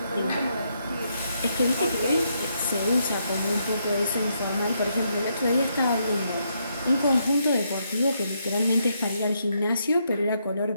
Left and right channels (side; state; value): both; inverted; correlation -0.77